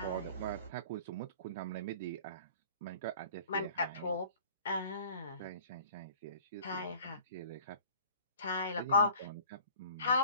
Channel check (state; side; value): inverted; both; correlation -0.48